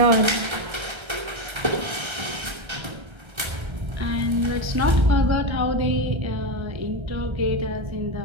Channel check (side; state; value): left; late; 1.3 ms